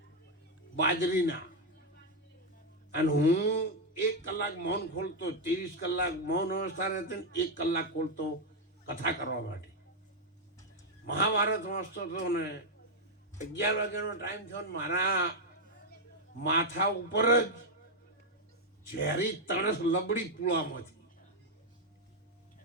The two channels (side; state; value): both; normal; correlation 0.01